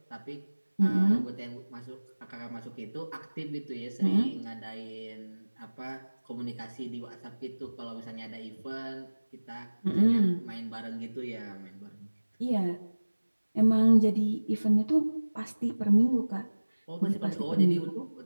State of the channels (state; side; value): inverted; both; correlation -1.00